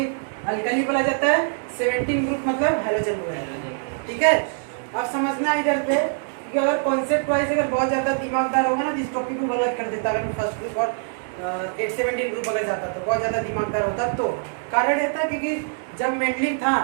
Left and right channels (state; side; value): silent; left; digital silence